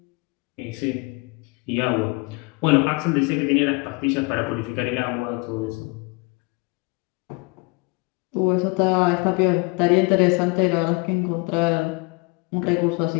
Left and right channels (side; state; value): right; quieter; 28.4 dB